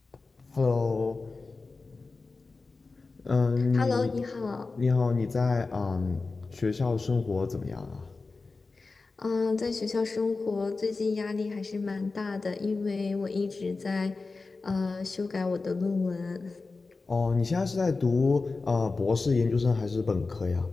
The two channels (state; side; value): quieter; right; 3.9 dB